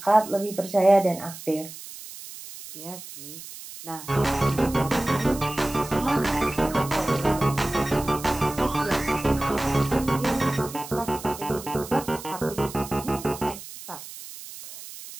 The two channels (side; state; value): right; noise; hiss, 14 dB below the sound